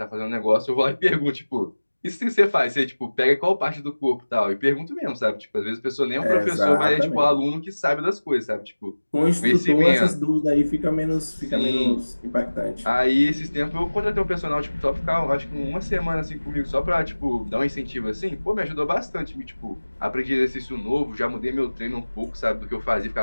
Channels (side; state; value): both; inverted; correlation -1.00